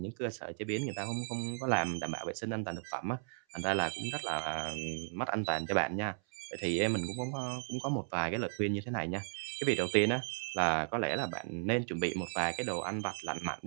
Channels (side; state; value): left; silent; 54 dB below the other